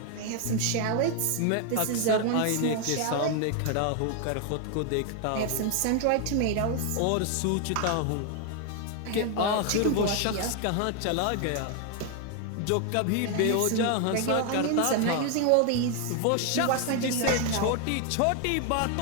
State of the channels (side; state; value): both; different; correlation 0.00